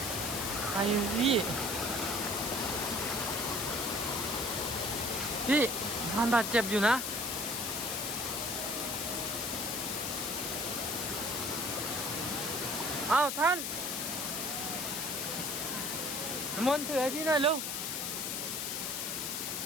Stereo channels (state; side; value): noise; left; hiss, 2 dB below the sound